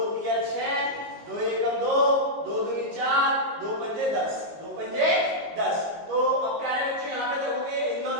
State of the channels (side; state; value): left; late; 19 ms